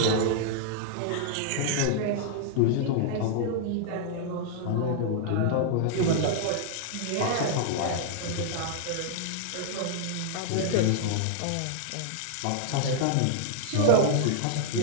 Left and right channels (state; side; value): different; both; correlation -0.01